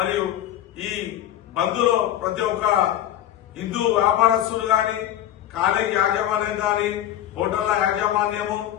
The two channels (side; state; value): right; quieter; 12.0 dB